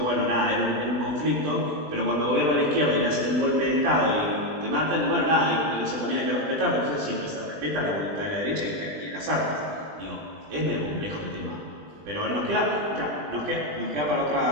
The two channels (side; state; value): left; late; 20 ms